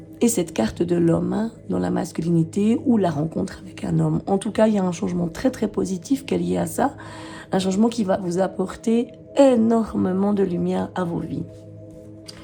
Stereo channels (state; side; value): identical; both; correlation 1.00